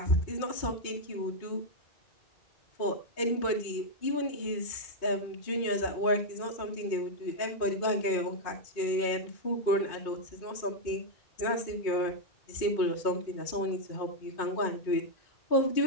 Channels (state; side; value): late; right; 2.5 ms